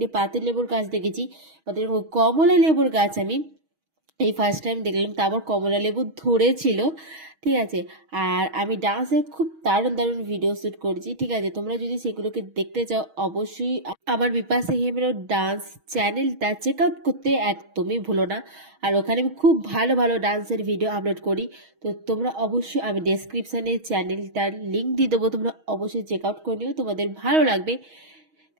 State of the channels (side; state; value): left; late; 6.3 ms